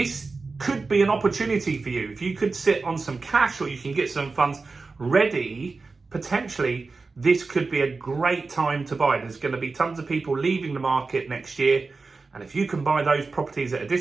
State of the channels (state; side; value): quieter; left; 4.0 dB